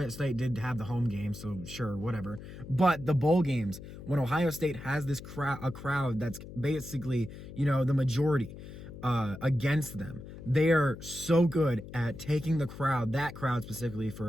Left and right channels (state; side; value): noise; left; hum, 13 dB below the sound